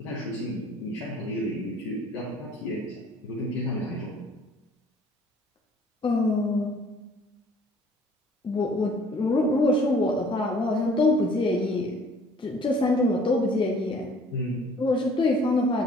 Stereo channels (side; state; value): both; normal; correlation 0.55